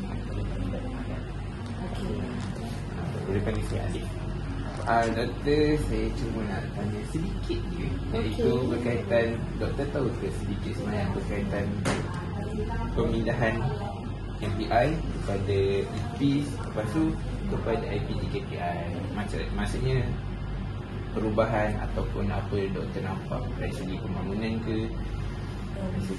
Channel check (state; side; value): identical; both; correlation 1.00